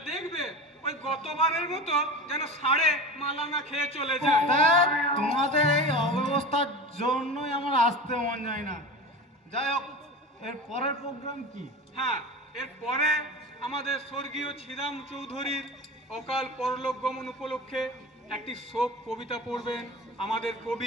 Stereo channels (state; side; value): normal; both; correlation 0.31